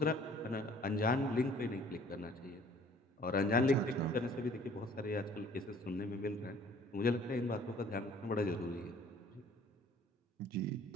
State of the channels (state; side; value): normal; both; correlation 0.54